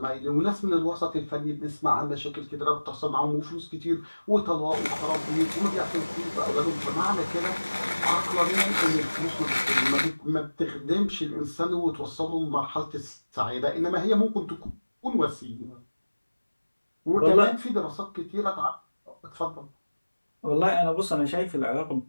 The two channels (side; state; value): both; inverted; correlation -1.00